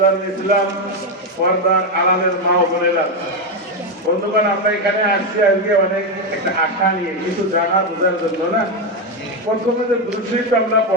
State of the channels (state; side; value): normal; both; correlation 0.07